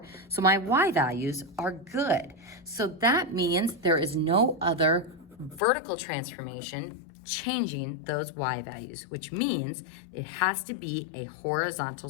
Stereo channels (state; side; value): drops out; right; at 5.6 s